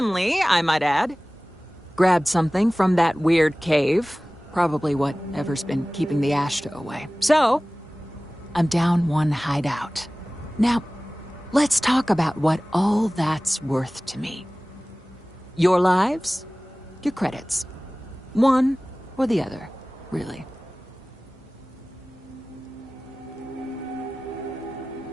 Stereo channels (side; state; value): both; normal; correlation 0.98